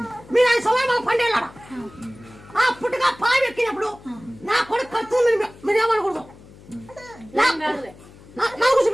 మీరు 5 సంవత్సరాలు పండేలాడా ఆ పుట్టగా పాలు ఎక్కినప్పుడు నా కొడుకు ఖర్చు మీరు ఏమనకూడదు నాకు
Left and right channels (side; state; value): left; noise; hum, 22 dB below the sound